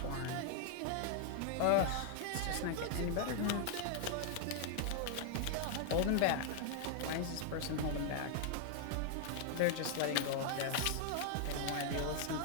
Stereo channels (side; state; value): both; different; correlation 0.00